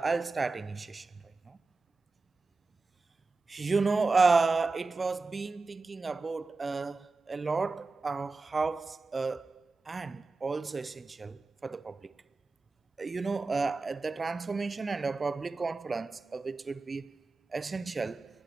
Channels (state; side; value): quieter; left; 3.8 dB